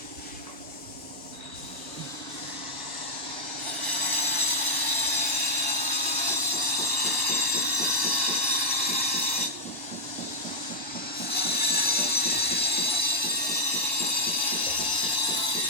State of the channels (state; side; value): normal; both; correlation -0.04